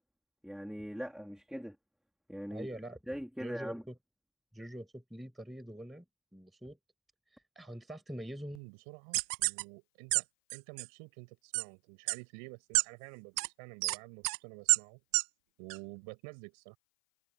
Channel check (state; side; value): drops out; left; at 8.6 s